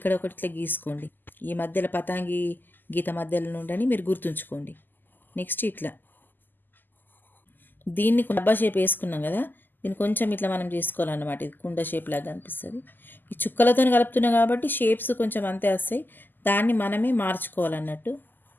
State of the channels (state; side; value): late; right; 0.090 ms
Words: ఒకటి ఇట్లా గీసుకోండి. ఈ మధ్యలో పతాంగి గీత మధ్యలో నుండి మీరు గుర్తుంచుకోండి. నెక్స్ట్ ఇట్లా దీన్ని డబ్బా షేప్ వేసుకున్నాం కదా, దీన్ని కొంచెం ఇట్లా మనం చేసుకోవాలన్నమాట. ఇది కుండ షేప్ లాగా అనిపిస్తుంది. ఈ చుక్కలతో కలుపుతున్నాం కాబట్టి షేప్స్ కొంచెం అంతే వస్తాయి. దాన్ని మనమే మార్చుకోవాలన్నట్టు.